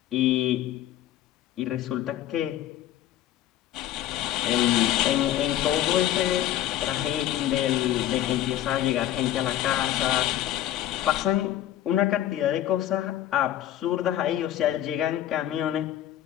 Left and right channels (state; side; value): quieter; right; 12.5 dB